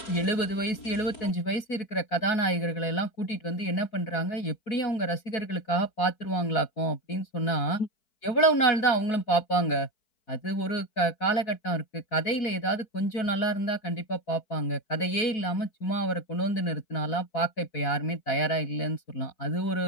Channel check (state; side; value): late; right; 4.6 ms